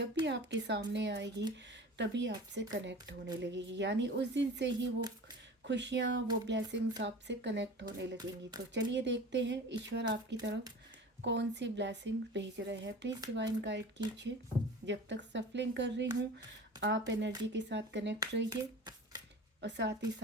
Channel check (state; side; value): normal; both; correlation 0.38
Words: भी आपके सामने आएगी तभी आपसे कनेक्ट होने लगेगी, यानी उस दिन से ही वो खुशियाँ, वो ब्लेसिंग्स आपसे कनेक्ट होने लगेंगी। तो चलिए देखते हैं ईश्वर आपकी तरफ कौन सी ब्लेसिंग्स भेज रहे हैं। प्लीज़ डिवाइन गाइड कीजिए। जब तक सफलिंग कर रही हूँ आप एनर्जी के साथ कनेक्ट रहिए और साथ ही